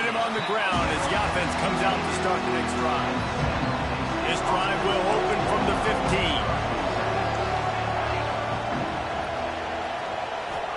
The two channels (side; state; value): both; identical; correlation 1.00